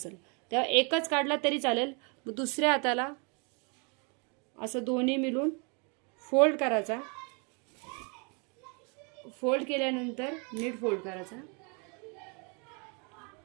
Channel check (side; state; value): left; quieter; 34.0 dB